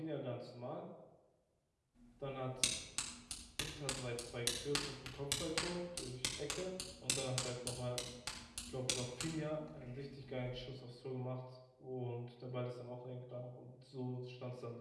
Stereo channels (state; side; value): identical; both; correlation 1.00